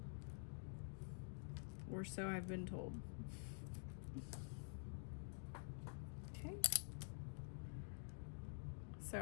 Or so I've been told. Okay.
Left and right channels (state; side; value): silent; right; digital silence